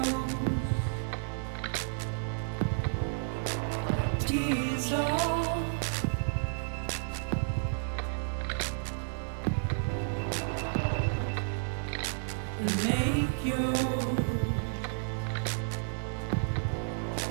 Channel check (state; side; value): silent; left; digital silence